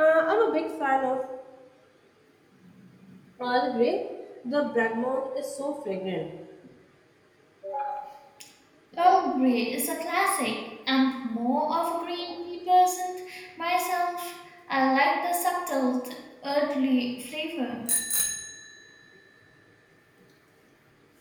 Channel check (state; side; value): identical; both; correlation 1.00